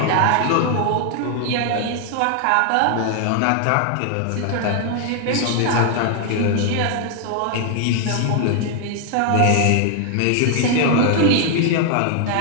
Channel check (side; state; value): both; different; correlation 0.00